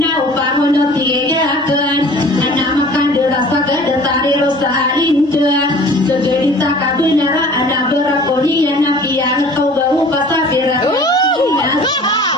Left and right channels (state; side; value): normal; both; correlation 0.47